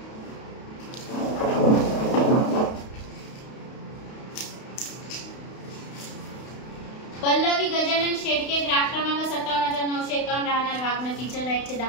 पल्लवी गजानन शेडके ग्राहक क्रमांक 57,951 राहणार वागणं किचन रॅकचे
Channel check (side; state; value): right; late; 32 ms